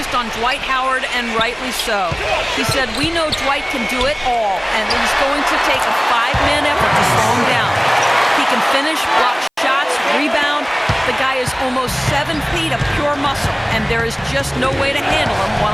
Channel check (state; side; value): identical; both; correlation 1.00